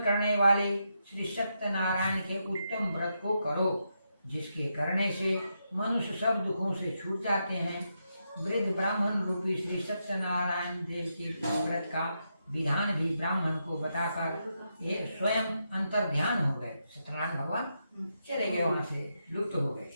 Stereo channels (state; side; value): inverted; both; correlation -0.83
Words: वाले श्री सत्यनारायण के उत्तम व्रत को करो, जिसके करने से मनुष्य सब दुखों से छूट जाते हैं। वृद्ध ब्राह्मण रूपी श्री सत्यनारायण देव के व्रत का विधान भी ब्राह्मण को बताकर ये स्वयं अंतर ध्यान हो गए। सत्यनारायण भगवान चले गए, वहां से लुप्त हो गए।